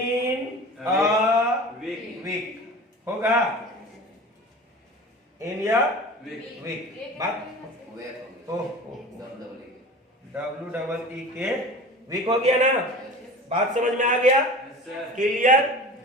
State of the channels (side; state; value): both; normal; correlation 0.37